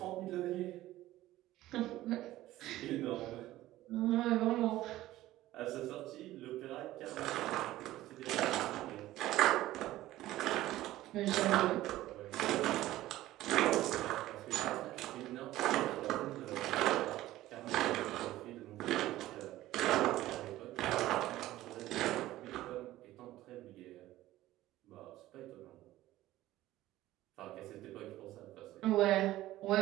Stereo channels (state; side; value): quieter; left; 15.6 dB